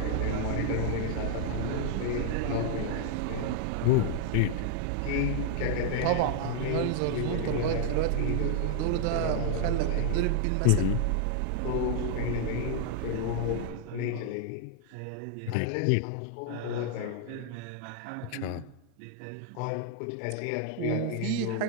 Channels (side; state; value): both; different; correlation 0.00